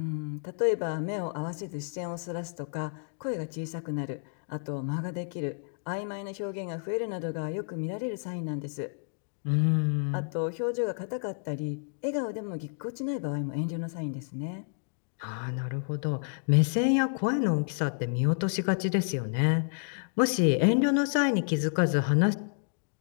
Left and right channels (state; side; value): silent; right; digital silence